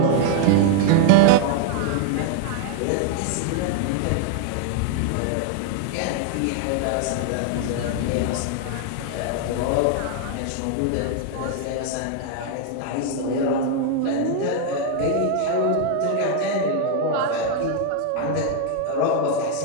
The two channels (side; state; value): both; different; correlation 0.00